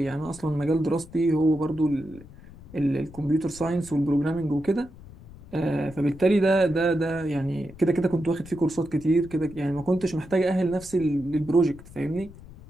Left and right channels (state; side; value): noise; left; rumble, 19 dB below the sound